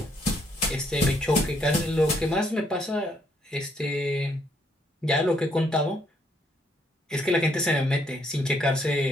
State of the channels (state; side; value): normal; both; correlation 0.71